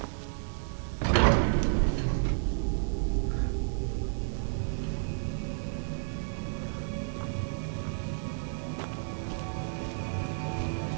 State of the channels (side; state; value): left; silent; digital silence